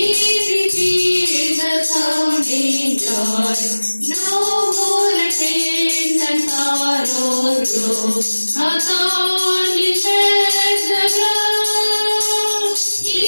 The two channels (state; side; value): inverted; both; correlation -1.00